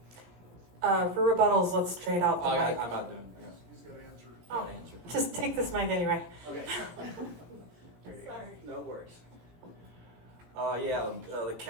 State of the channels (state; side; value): late; left; 17 ms